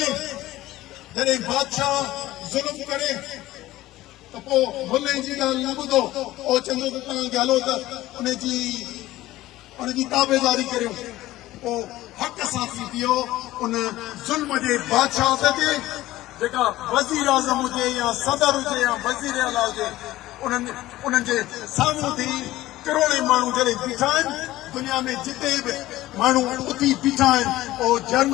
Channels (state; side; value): quieter; right; 16.3 dB